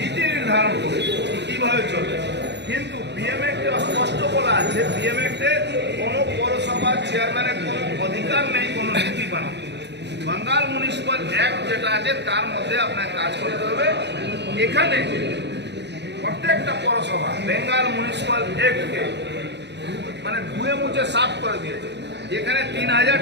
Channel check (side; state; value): left; late; 0.50 ms